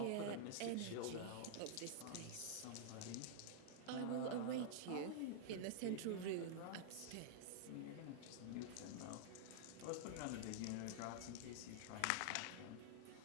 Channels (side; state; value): both; different; correlation -0.01